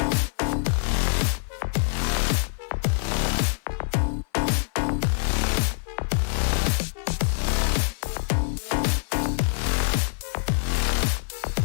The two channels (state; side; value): silent; right; 57 dB below the other